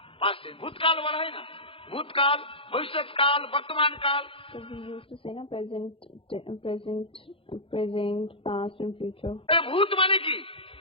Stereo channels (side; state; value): right; late; 0.26 ms